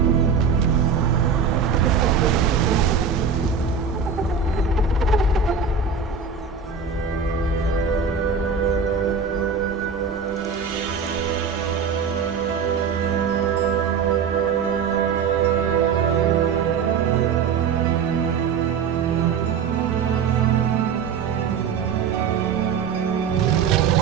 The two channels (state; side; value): quieter; left; 6.2 dB